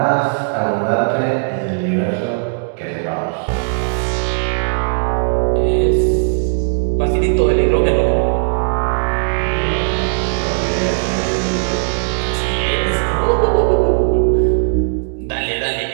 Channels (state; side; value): silent; left; digital silence